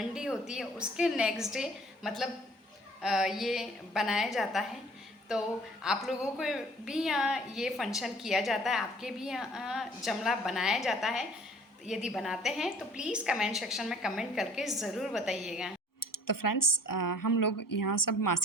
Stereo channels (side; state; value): both; normal; correlation 0.53